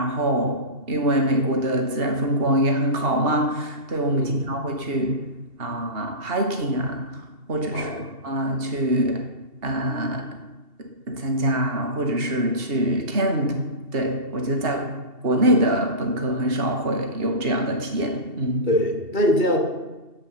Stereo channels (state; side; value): late; left; 2.7 ms